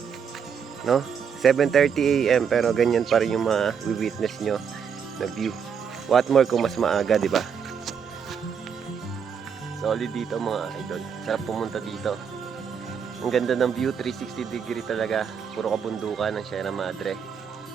no? 7:30 AM pero ganyan pa rin yung ma-witness nyo na view. What more kung mas maaga, di ba? Solid dito mga idol. Sarap pumunta dito. Ang ganda ng view, 360 degree talaga. Puro kabundukan ng Sierra Madre.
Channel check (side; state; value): left; quieter; 7.0 dB